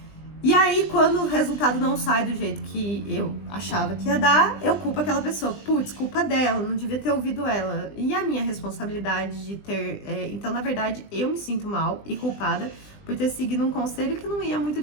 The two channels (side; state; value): right; late; 20 ms